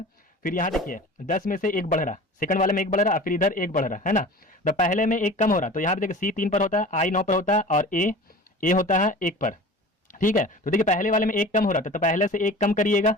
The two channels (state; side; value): normal; both; correlation 0.39